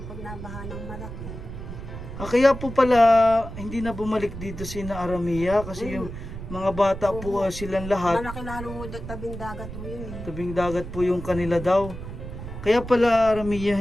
pag nabaha ng malaki. Kaya po pala hindi na bumalik dito si na Aramia kasi yung mga bata po silang lahat. Malaki lalo ho tabing dagat ho yun eh. Tabing dagat po yung kanila daw. Kaya pala Aramia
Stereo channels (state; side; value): noise; right; rumble, 10 dB below the sound